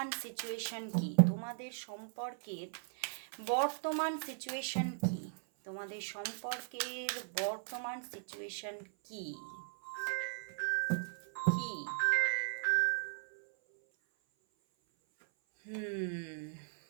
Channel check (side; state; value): left; silent; 53 dB below the other